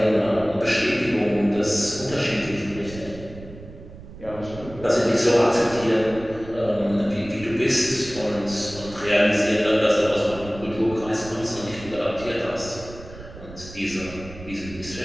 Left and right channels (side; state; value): right; noise; rumble, 16 dB below the sound